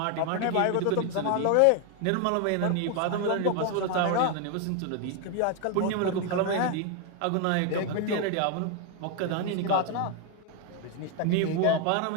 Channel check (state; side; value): different; both; correlation 0.01